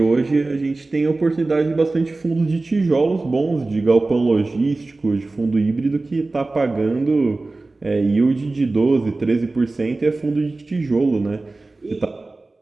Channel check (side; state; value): left; quieter; 3.3 dB